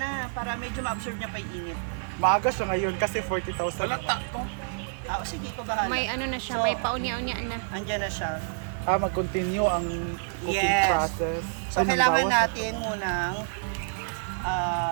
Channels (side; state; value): left; silent; digital silence